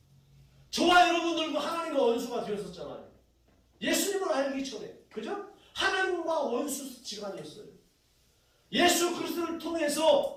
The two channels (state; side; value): identical; both; correlation 1.00